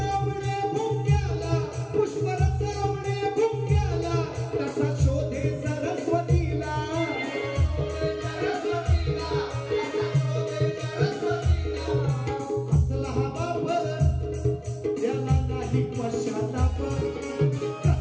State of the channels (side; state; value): both; identical; correlation 1.00